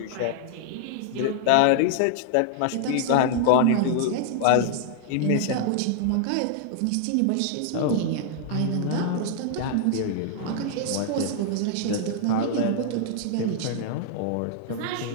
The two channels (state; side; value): different; both; correlation 0.00